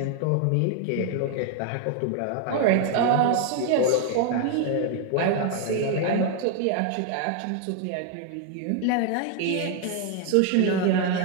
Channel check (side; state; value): both; different; correlation 0.01